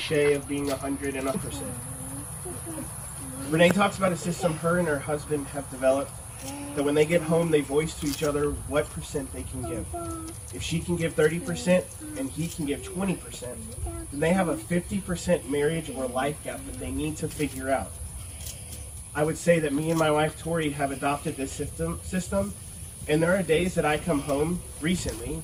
of being 100%. Renee talks about a system her and her husband have developed that when they get home, they voice to each other what percent they can give. If she can give 30% and he can give 20%, then they have a 50% marriage or life gap that they need to figure out. I would say that me and my wife Tori have adopted this system, and there are days that I come home recently,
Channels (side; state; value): both; identical; correlation 1.00